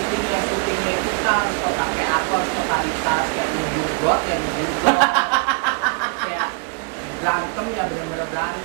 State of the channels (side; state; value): left; quieter; 32.8 dB